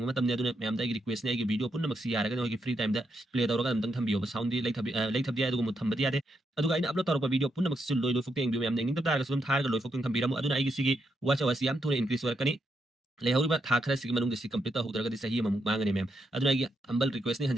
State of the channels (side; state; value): both; normal; correlation 0.81